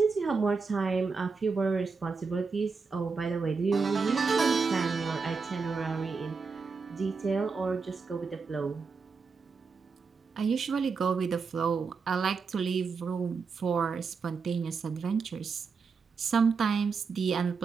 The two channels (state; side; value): quieter; left; 5.0 dB